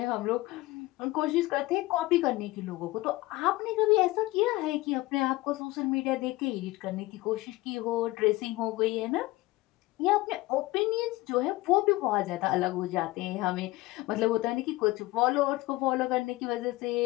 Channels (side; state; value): right; quieter; 19.8 dB